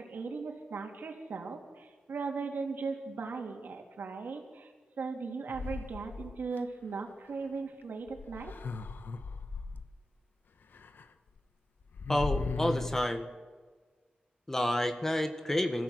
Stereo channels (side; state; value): both; normal; correlation 0.90